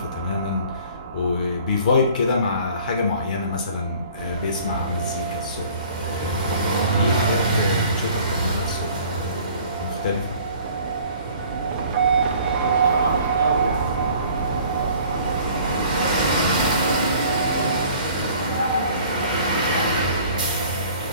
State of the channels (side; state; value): both; inverted; correlation -0.51